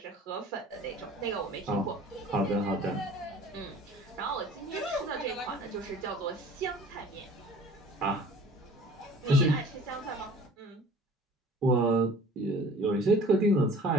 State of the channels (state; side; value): normal; both; correlation 0.48